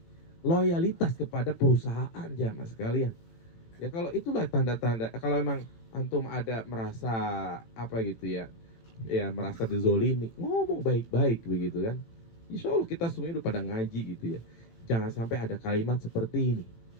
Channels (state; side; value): late; right; 17 ms